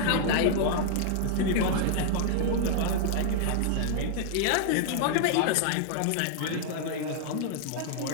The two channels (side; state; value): both; different; correlation -0.01